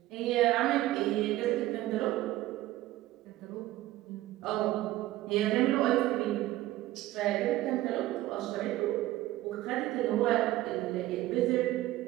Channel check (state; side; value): quieter; left; 15.9 dB